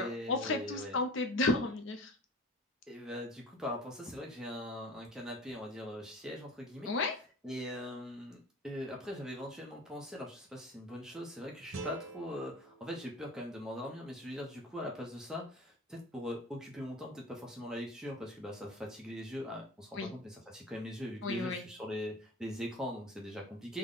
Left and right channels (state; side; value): normal; both; correlation 0.38